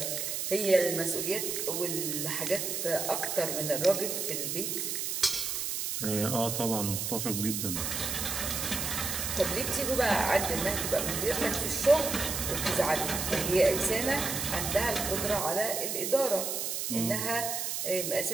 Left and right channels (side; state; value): right; noise; hiss, 2 dB below the sound